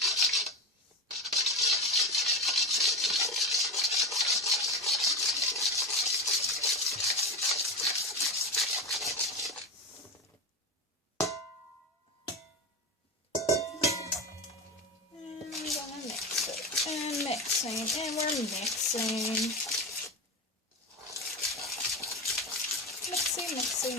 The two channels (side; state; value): both; normal; correlation 0.21